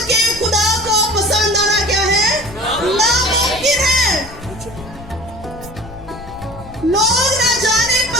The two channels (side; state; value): left; noise; rumble, 17 dB below the sound